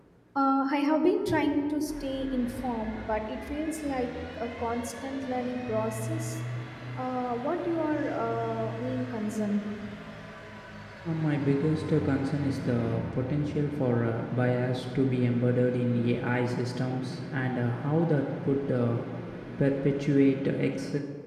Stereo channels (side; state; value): both; identical; correlation 1.00